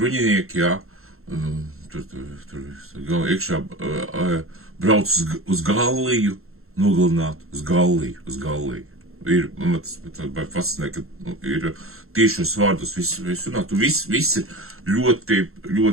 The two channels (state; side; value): late; left; 0.62 ms